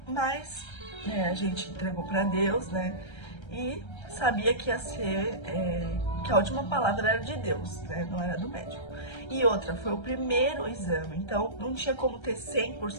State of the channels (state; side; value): late; right; 1.3 ms